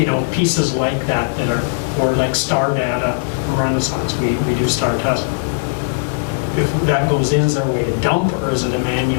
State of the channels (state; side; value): silent; right; digital silence